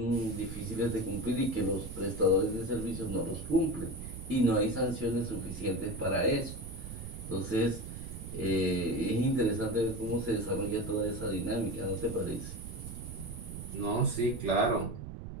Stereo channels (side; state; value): right; noise; rumble, 9 dB below the sound